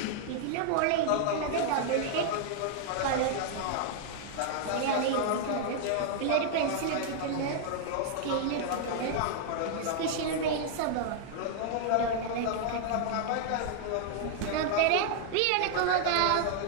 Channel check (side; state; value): both; different; correlation -0.01